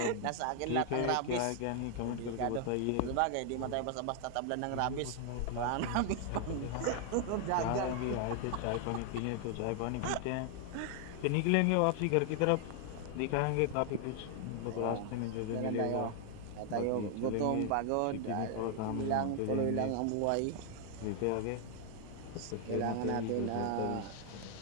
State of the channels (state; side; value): different; both; correlation 0.00